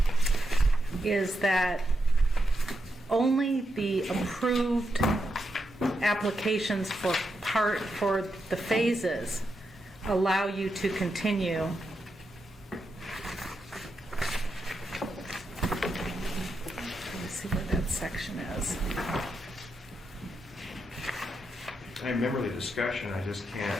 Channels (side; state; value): both; normal; correlation 0.85